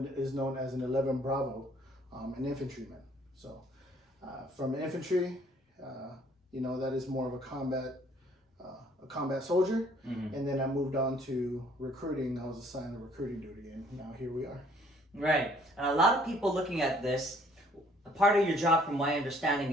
is known as an 11 Bravo, an infantryman. So from infantry, that is more of a combat soldier, Mm-hmm. and then I moved on to recruiting. I was assigned to recruiting duty, and now here we are. Right. And a lot of people looking at this, a part of your job, from my understanding,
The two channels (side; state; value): both; normal; correlation 0.60